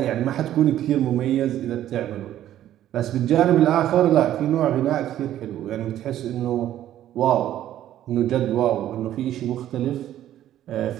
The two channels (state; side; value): quieter; left; 12.2 dB